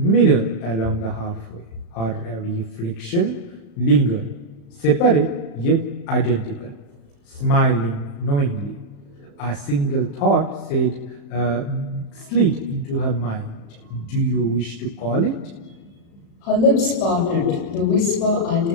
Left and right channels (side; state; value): right; late; 35 ms